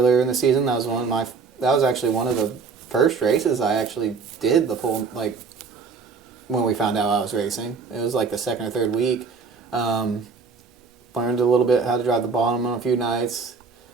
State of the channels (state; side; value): quieter; left; 5.0 dB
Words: in the season. That was actually one of the first races I actually did the full when we found out I was racing. It was like the second or third week. Learned a little bit how to drive the bottom on a few nights.